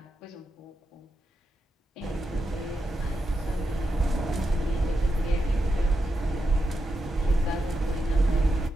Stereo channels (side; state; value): both; normal; correlation 0.86